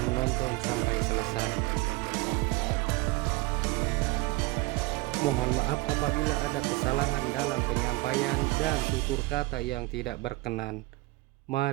sampai selesai. Mohon maaf apabila ada kesalahan dalam penyampaian dan tutur kata yang tidak berkenan.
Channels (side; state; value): left; quieter; 22.1 dB